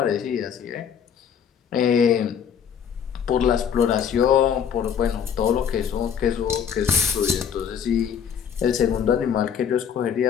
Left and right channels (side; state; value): right; quieter; 7.9 dB